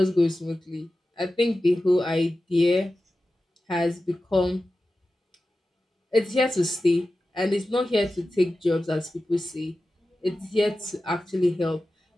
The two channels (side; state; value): both; normal; correlation 0.94